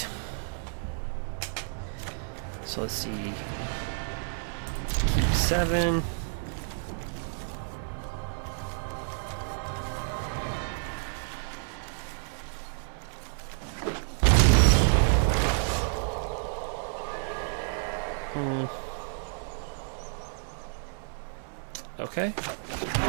So let's see. Keep 7. Okay.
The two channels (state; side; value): silent; left; 58 dB below the other